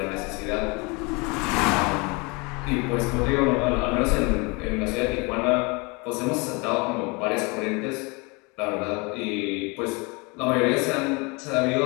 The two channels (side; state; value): right; quieter; 28.5 dB